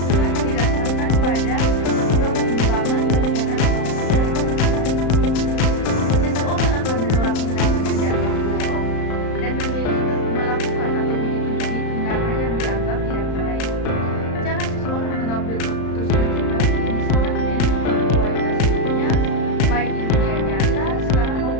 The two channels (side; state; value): right; late; 35 ms